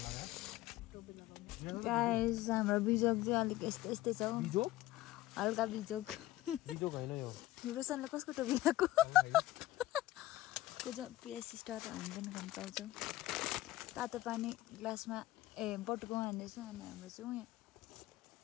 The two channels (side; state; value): right; quieter; 16.1 dB